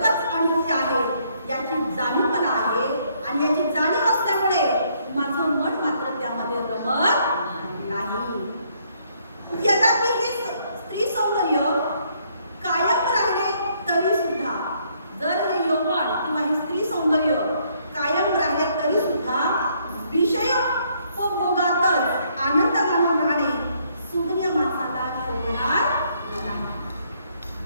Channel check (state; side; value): inverted; both; correlation -0.69